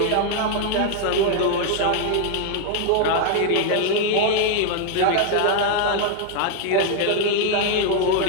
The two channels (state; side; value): different; both; correlation 0.00